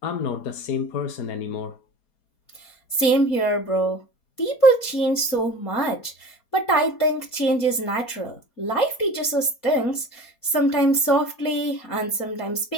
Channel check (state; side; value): late; right; 4.3 ms